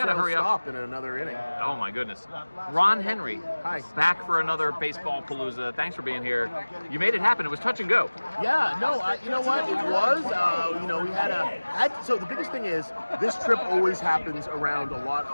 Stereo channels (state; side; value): inverted; both; correlation -1.00